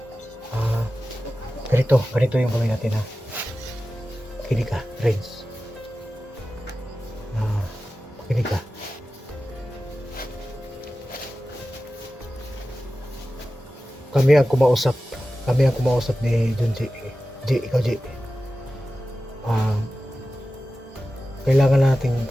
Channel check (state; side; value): normal; both; correlation 0.94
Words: ganito yung gawin natin, ha. Makinig ka, Renz. Makinig ka. Kami ang kumausap ni John J. Ikaw J. Kailangan natin